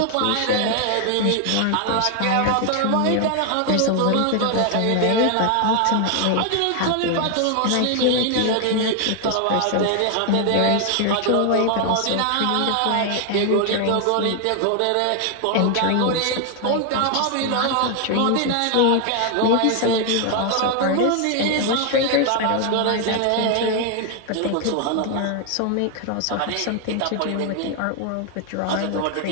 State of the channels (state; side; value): different; both; correlation 0.00